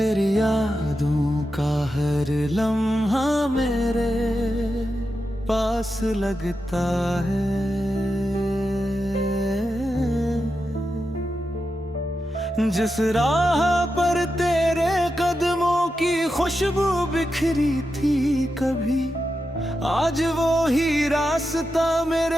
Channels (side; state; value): both; normal; correlation 0.88